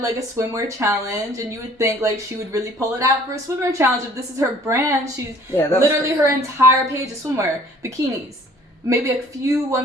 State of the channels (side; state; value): both; normal; correlation 0.54